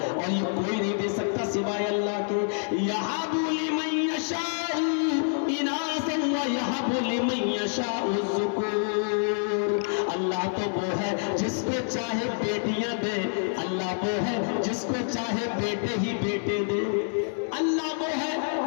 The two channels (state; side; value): silent; right; 60 dB below the other